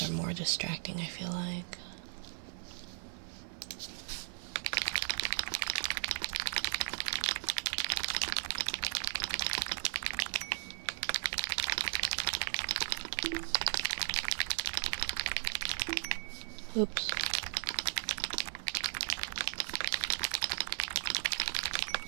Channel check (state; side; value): silent; left; 53 dB below the other